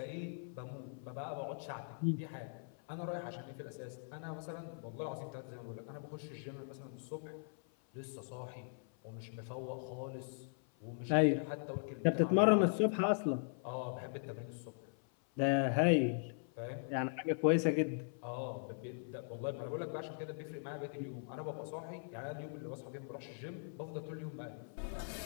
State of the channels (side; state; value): right; silent; 51 dB below the other